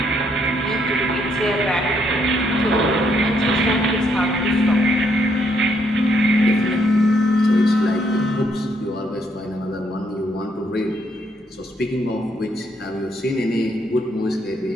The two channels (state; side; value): normal; both; correlation 0.72